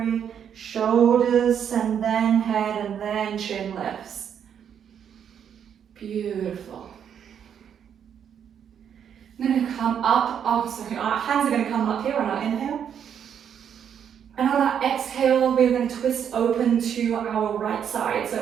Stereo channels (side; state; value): left; quieter; 8.4 dB